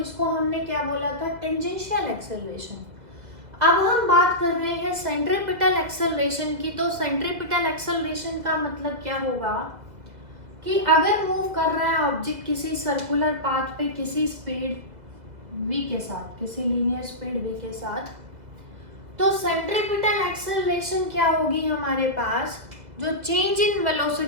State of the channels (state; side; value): late; left; 2.0 ms